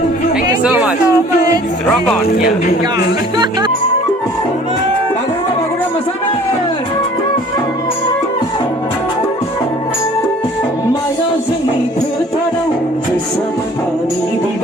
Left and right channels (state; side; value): normal; both; correlation 0.51